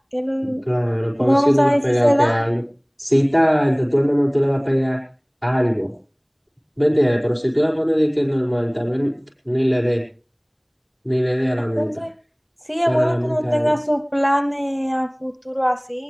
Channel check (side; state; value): both; identical; correlation 1.00